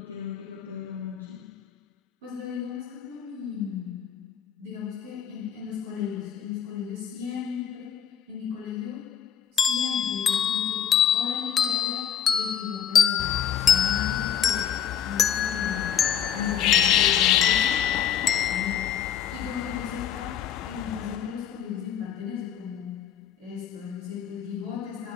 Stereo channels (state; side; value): quieter; right; 8.9 dB